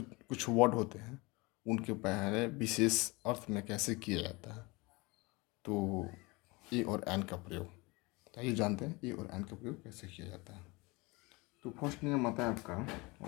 वर्ड होते हैं, उनके पहले विशेष अर्थ में कैसे किया जाता है। तो ए और एन का प्रयोग, तो आइए जानते हैं ए और एन का प्रयोग कैसे किया जाता है। तो फर्स्ट नियम आता है आपका,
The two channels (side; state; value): right; quieter; 25.1 dB